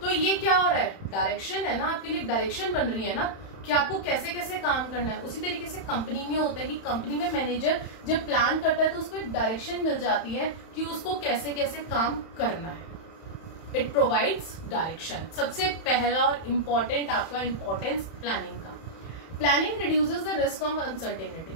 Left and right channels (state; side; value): late; right; 31 ms